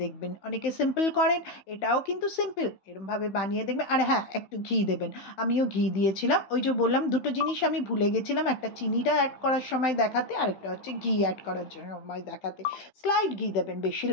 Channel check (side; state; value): right; late; 15 ms